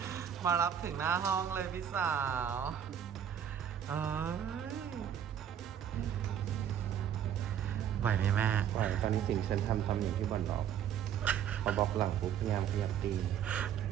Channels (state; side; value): quieter; left; 9.2 dB